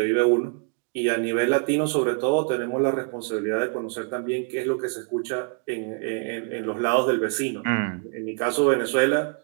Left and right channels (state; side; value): quieter; left; 38.0 dB